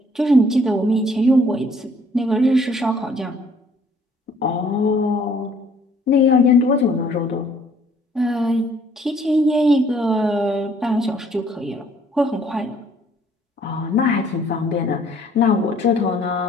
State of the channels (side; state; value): both; normal; correlation 0.61